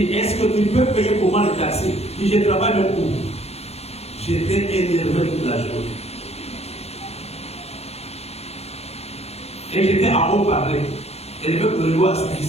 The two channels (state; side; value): late; right; 0.30 ms